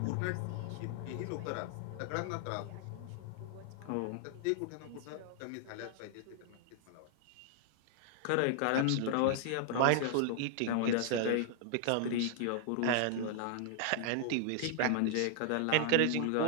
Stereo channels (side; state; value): both; different; correlation -0.01